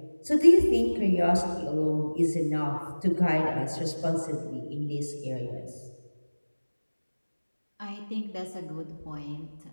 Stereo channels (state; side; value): inverted; both; correlation -1.00